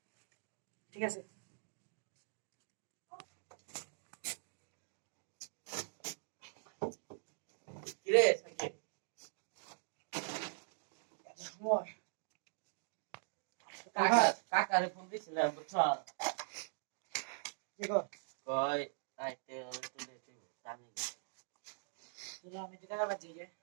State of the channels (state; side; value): silent; left; digital silence